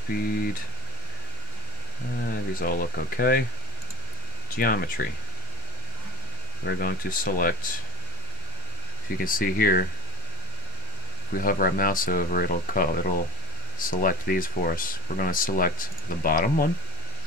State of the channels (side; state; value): both; normal; correlation 0.16